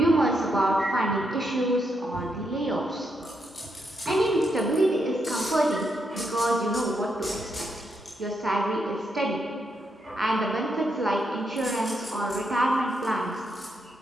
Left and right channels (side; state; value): both; normal; correlation 0.80